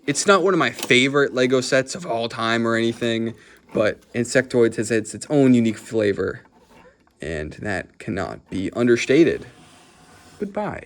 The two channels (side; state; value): both; identical; correlation 1.00